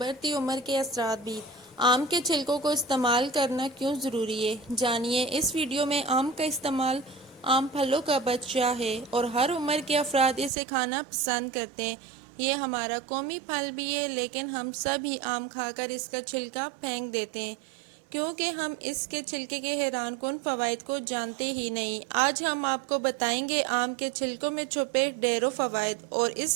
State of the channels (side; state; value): left; drops out; at 10.5 s